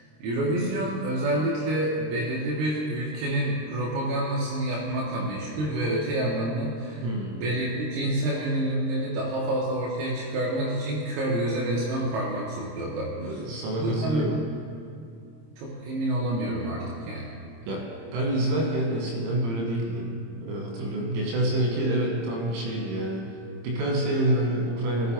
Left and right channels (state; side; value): late; left; 26 ms